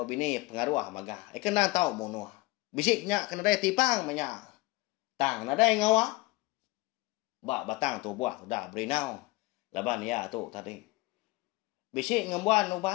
bini pengaruh magah. Kena tahu monua. Bisik nya kena dai tipang manya. Tang na dai ngawa. Ba batang tu buah tu dah berenau. Laban ya tu tadi. Bisik ngembuan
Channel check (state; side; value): quieter; right; 21.3 dB